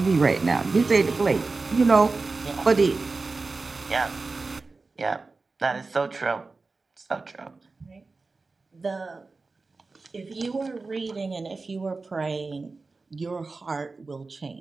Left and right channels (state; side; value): quieter; left; 3.8 dB